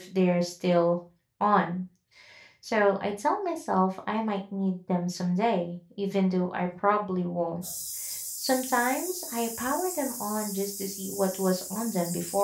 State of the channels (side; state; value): both; identical; correlation 1.00